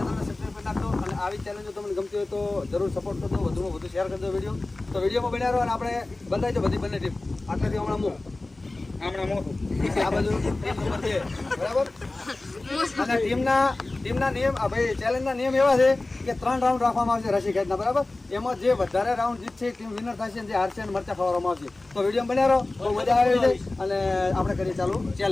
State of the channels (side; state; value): right; quieter; 3.0 dB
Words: સબસ્ક્રાઈબ કરી નાખજો. અને આવી ચેલેન્જો તમને ગમતી હોય તો જરૂર સપોર્ટ કરજો, વધુમાં વધુ શેર કરજો વિડીયો. તો વિડીયોમાં બન્યા રહો અને આપણે બંધાઈ બધી બંને ટીમ. આટલાથી હમણાં મોટું આ બાજુ ટીમ નંબર 2 બરાબર. અને ટીમના નિયમ ભાઈ ચેલેન્જના નિયમ એવા છે કે 3 રાઉન્ડ રાખવામાં આવશે રસી ખેંચના બરાબર. એમાં જે વધારે રાઉન્ડ જીતશે ટીમ વિનર થશે, જે હારશે અને મરચા ખવડાવવામાં આવશે. તો વિડીયો બન્યા રહો, બહુ મજા આવી છે અને આપણે કરીએ ચાલુ